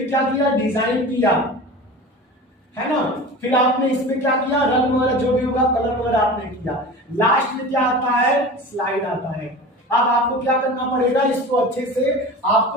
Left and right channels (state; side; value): normal; both; correlation 0.34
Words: क्या किया, डिजाइन किया, है ना, फिर आपने इसमें क्या किया, रंग वगैरह जो भी होगा कलर वगैरह आपने किया, लास्ट में क्या आता है, स्लाइड आता है। अब आपको क्या करना पड़ेगा, इसको अच्छे से